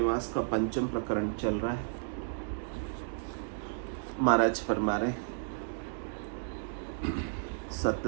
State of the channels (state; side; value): silent; left; digital silence